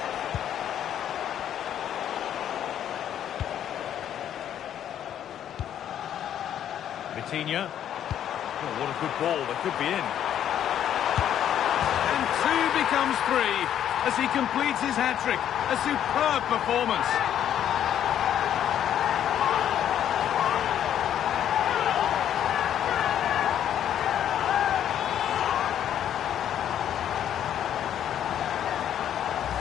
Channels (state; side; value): quieter; right; 10.2 dB